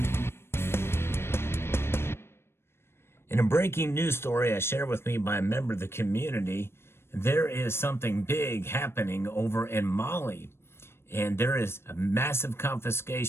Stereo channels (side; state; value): right; late; 0.12 ms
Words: In a breaking news story as shared with me by a member of the community, there is something big happening over in Mali. And there is a massive